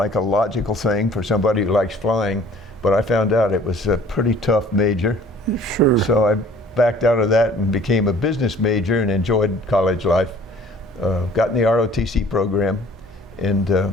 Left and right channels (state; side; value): normal; both; correlation 0.52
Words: a logical thing for somebody who likes flying, but I found out it was a pretty tough major. Sure. So I backed out of that and became a business major and enjoyed college life. Got in the ROTC program and